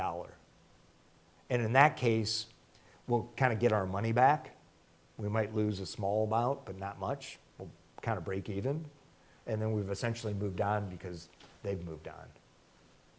And in that case, we'll kind of get our money back. We might lose a small amount, but not much. We'll kind of break even. And then we've essentially moved on because they've moved on.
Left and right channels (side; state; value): both; identical; correlation 1.00